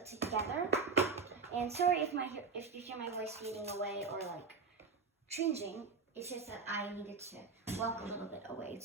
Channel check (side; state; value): left; quieter; 5.0 dB